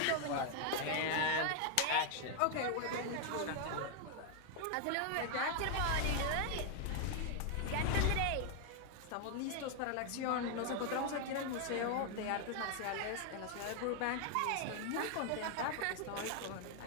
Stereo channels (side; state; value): both; different; correlation 0.00